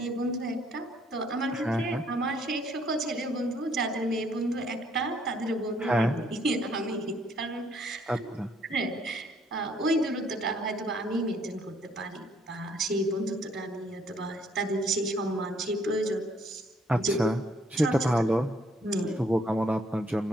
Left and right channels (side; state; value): both; normal; correlation 0.66